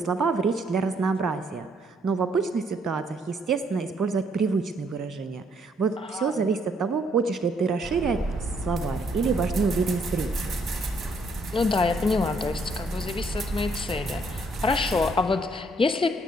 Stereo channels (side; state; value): both; normal; correlation 0.69